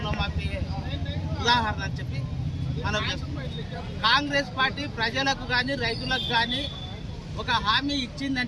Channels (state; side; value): identical; both; correlation 1.00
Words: ఉదాహరణ అని చెప్పి మనం చేస్తున్నాం. కాంగ్రెస్ పార్టీ ప్రజలకు కానీ రైతులకు కానీ ఒక హామీ